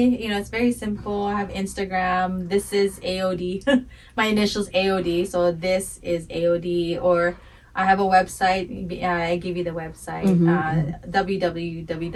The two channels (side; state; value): both; identical; correlation 1.00